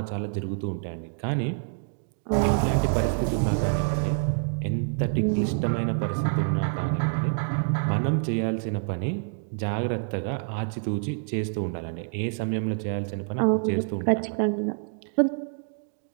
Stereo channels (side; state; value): left; silent; 60 dB below the other